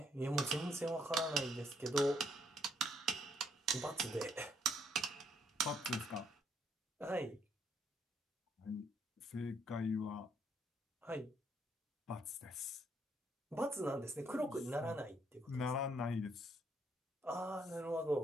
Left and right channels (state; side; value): normal; both; correlation 0.71